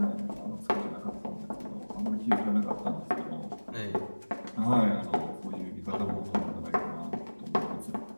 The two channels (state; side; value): inverted; both; correlation -1.00